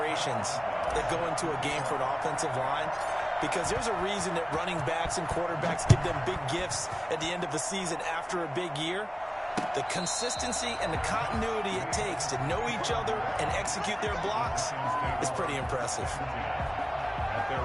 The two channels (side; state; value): both; identical; correlation 1.00